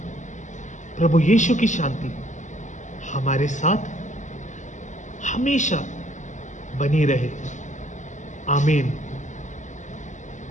प्रभु यीशु की शांति हमारे साथ हमेशा बनी रहे, आमीन।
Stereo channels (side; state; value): right; late; 0.35 ms